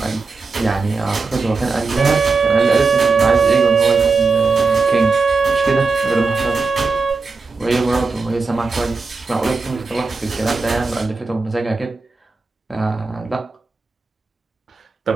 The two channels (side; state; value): left; quieter; 4.3 dB